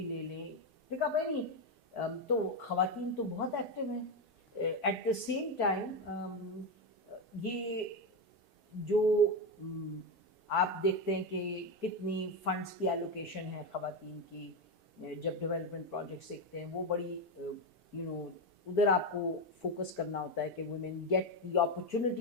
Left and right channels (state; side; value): normal; both; correlation 0.10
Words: لے لیں، پک اپ اینی. تو خواتین تو بہت ایکٹیو ہیں. ایٹ دا سیم ٹائم یہ جو آپ دیکھتے ہیں کہ کتنی فنڈس کی ایلوکیشن ہے خواتین کی، جب ڈیولپمنٹ پروجیکٹس دیکھتے ہیں وہ بڑی ادھر آپ کو فوکس کرنا ہوتا ہے کہ women get the